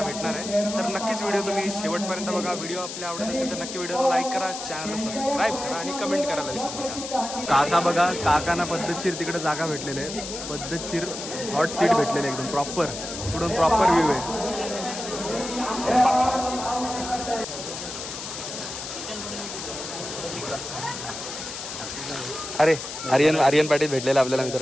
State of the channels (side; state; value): left; noise; hiss, 8 dB below the sound